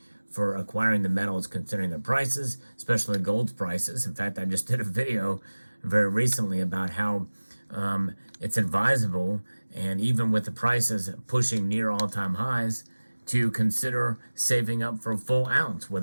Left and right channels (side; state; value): both; inverted; correlation -1.00